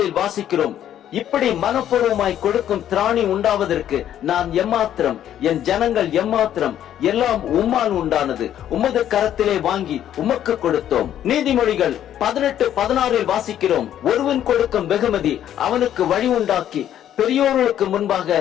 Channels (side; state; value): right; quieter; 10.9 dB